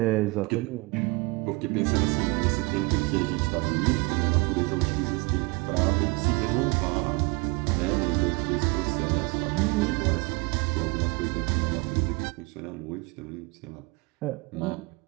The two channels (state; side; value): quieter; left; 27.0 dB